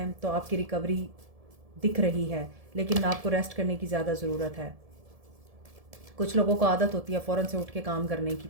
तो आपकी रिकवरी दिख रही है, लेकिन आपको रेस्ट करने की ज़्यादा ज़रूरत है। कुछ लोगों को आदत होती है फ़ौरन से उठ के काम करने की,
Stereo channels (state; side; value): late; left; 1.7 ms